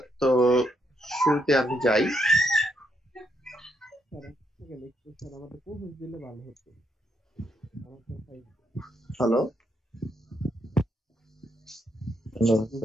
তো শুরুতে আমি যাই। Hello, hello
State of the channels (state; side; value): normal; both; correlation 0.77